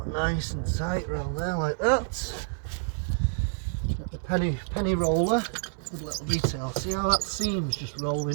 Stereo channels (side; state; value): left; silent; 59 dB below the other